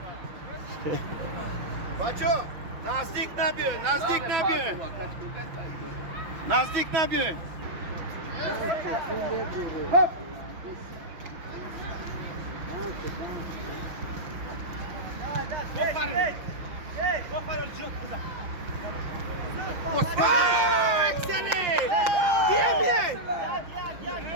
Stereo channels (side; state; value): left; late; 6.2 ms